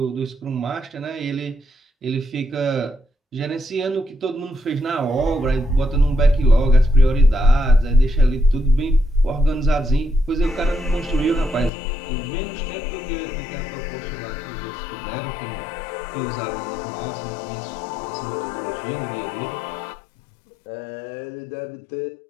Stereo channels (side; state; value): right; drops out; at 11.7 s